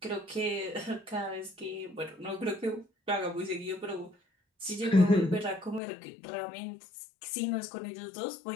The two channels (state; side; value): drops out; right; at 5.8 s